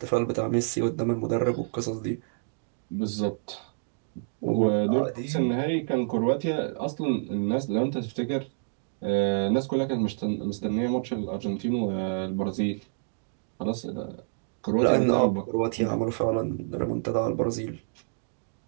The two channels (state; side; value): silent; left; digital silence